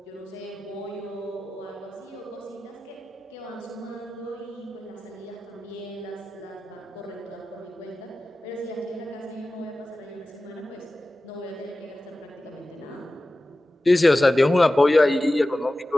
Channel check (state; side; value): normal; both; correlation 0.95